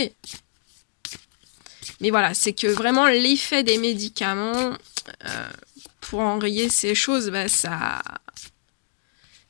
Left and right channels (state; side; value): silent; right; digital silence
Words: Mais voilà, c'est que vraiment l'effet des médicaments, pour enrayer ces choses,